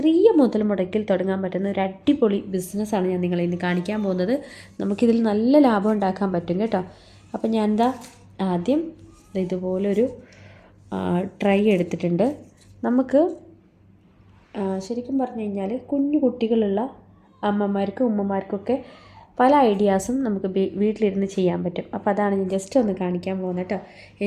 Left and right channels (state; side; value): identical; both; correlation 1.00